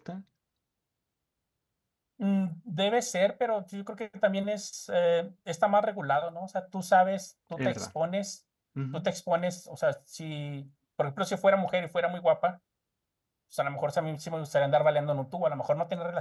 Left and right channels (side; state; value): both; identical; correlation 1.00